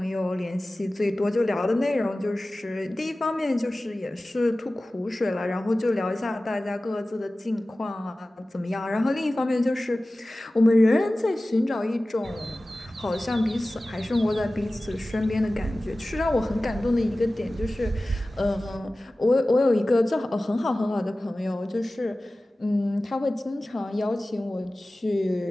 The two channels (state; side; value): normal; both; correlation 0.97